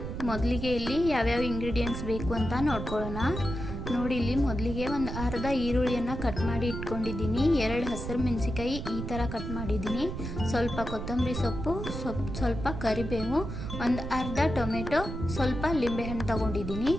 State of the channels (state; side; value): noise; right; rumble, 6 dB below the sound